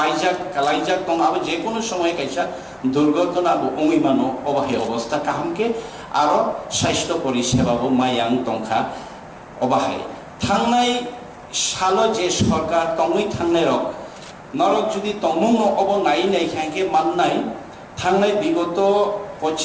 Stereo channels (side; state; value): both; identical; correlation 1.00